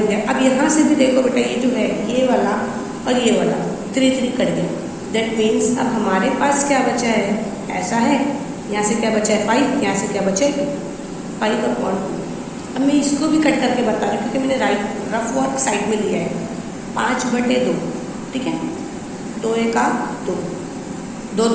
गया। अब यहाँ से भी देखो बेटा, ये जो है ये वाला और ये वाला 3 3 कट गया, दैट मीन्स अब हमारे पास क्या बचा है, ऐसा है, यहाँ से क्या बचा है 5, यहाँ से क्या बचा है 5/2। अब मैं इसको भी कट करके बता रही हूँ क्योंकि मैंने रफ वर्क साइड में लिया है, 5/2, ठीक है, 2 1 2, 2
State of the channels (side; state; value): both; identical; correlation 1.00